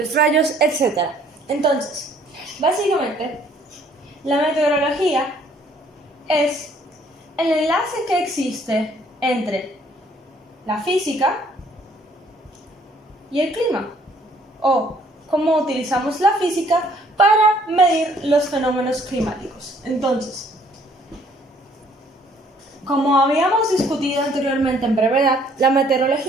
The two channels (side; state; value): both; normal; correlation 0.62